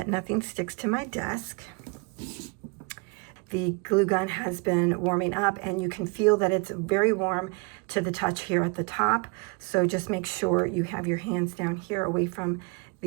nothing sticks to my desk. The glue gun has been warming up, and you can feel that it's very warm to the touch here at the top. So just make sure you have your hands down here away from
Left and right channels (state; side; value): quieter; left; 30.4 dB